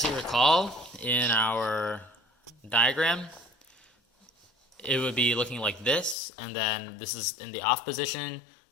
you recall, in our diagram, it would be looking like this, and then this is in the off position,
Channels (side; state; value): right; drops out; at 6.2 s